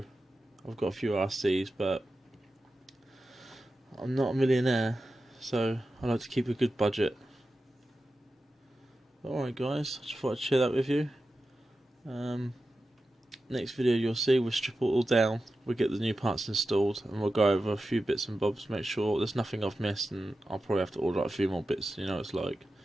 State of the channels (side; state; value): both; normal; correlation 0.92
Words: I've got a few RCs, but I'm not a millionaire, so I like to keep a good budget. Alright guys, I just thought I'd share that with you. Next video you'll see, we'll strip it all down, we'll get the new parts installed, and we'll go over a few bits and bobs, make sure there's nothing I've missed, and I'll probably have to order a few more bits, it's like.